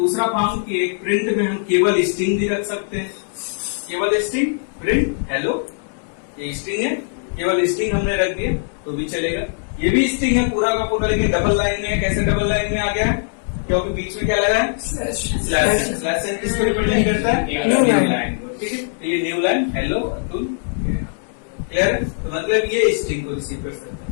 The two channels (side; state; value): right; silent; digital silence